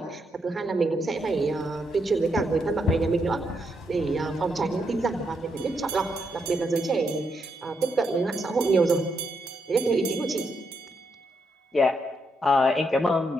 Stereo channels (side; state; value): both; normal; correlation 0.80